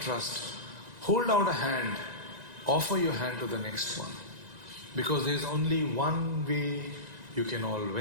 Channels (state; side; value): late; left; 1.9 ms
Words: Hold out a hand, offer your hand to the next one. Because there is only one way you can all